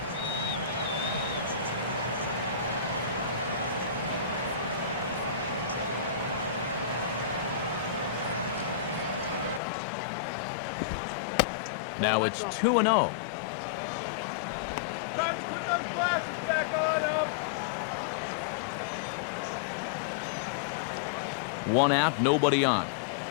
Now it's 2-0. Time to put those glasses back on them. 1 out, nobody on.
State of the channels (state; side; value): drops out; right; at 9.6 s